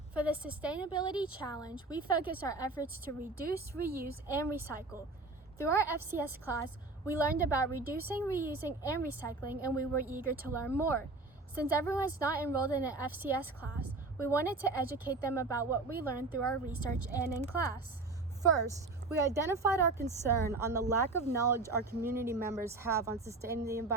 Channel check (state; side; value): quieter; left; 3.5 dB